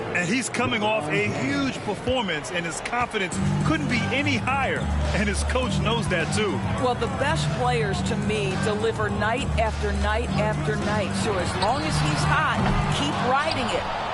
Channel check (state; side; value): identical; both; correlation 1.00